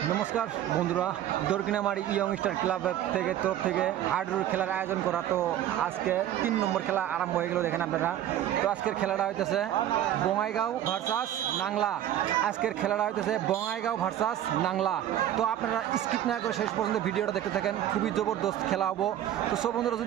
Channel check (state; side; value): quieter; left; 11.8 dB